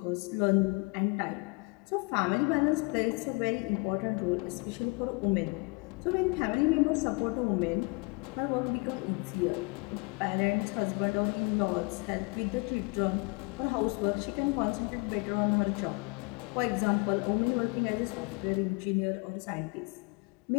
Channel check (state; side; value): quieter; right; 30.1 dB